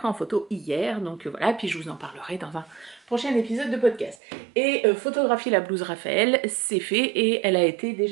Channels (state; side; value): drops out; left; at 4.2 s